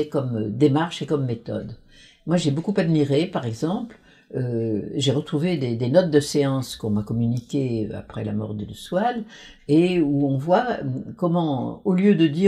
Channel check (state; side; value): identical; both; correlation 1.00